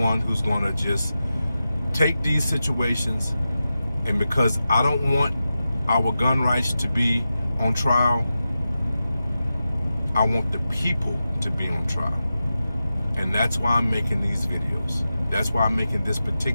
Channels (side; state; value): both; inverted; correlation -0.92